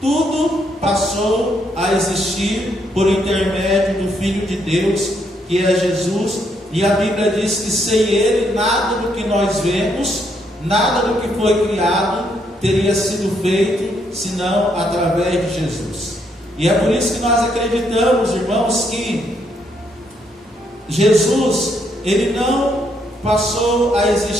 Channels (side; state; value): both; normal; correlation 0.74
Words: Tudo passou a existir por intermédio do Filho de Deus, que é Jesus. E a Bíblia diz que sem ele nada do que nós vemos, nada do que foi criado teria sido feito, senão através de Jesus. E é por isso que nós acreditamos, irmãos, que Jesus, ele não passou a